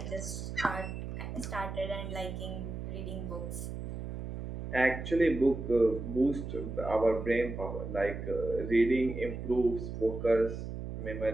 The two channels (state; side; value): noise; right; hum, 7 dB below the sound